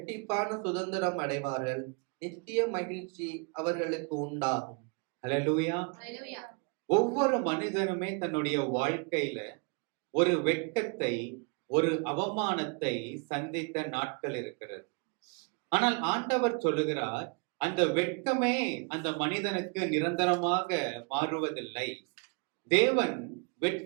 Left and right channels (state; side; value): quieter; left; 34.7 dB